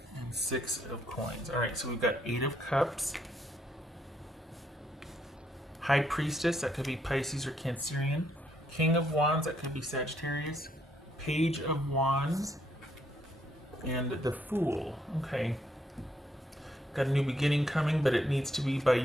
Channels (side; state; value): both; normal; correlation 0.73